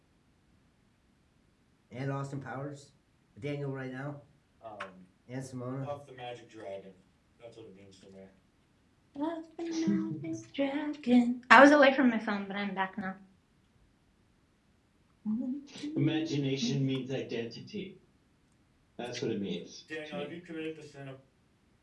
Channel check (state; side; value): identical; both; correlation 1.00